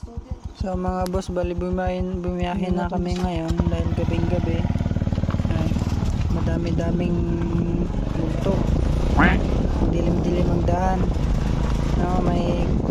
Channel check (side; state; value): both; identical; correlation 1.00